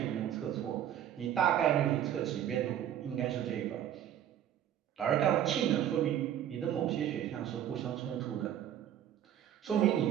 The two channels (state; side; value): quieter; left; 10.6 dB